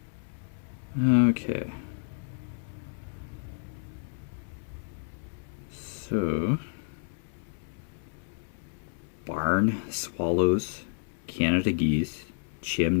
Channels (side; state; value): right; silent; 57 dB below the other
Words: Okay. So, barn swallows, Canada geese,